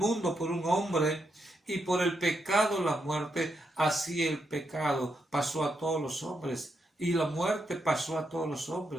por un hombre, y por el pecado la muerte, así el pecado pasó a todos los hombres, y la muerte pasó a todos los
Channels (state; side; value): normal; both; correlation 0.82